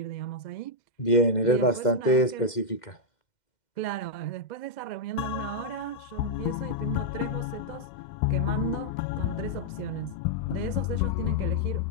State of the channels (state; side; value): late; right; 2.1 ms